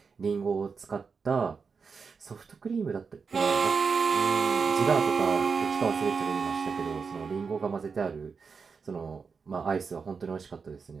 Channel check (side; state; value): left; quieter; 5.3 dB